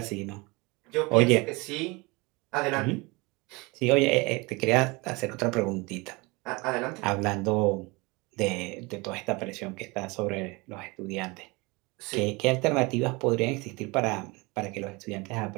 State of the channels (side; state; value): left; quieter; 25.5 dB